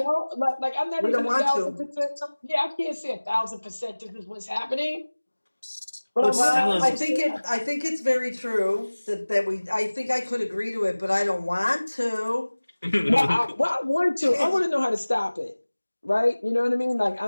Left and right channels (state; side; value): inverted; both; correlation -1.00